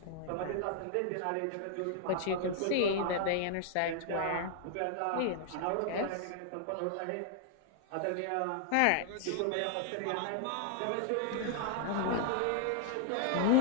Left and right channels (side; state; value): both; different; correlation -0.01